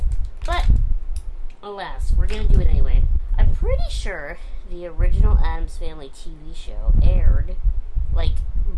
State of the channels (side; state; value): both; identical; correlation 1.00